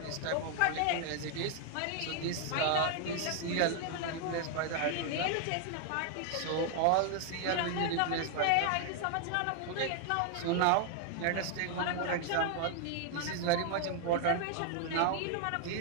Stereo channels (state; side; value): different; both; correlation 0.00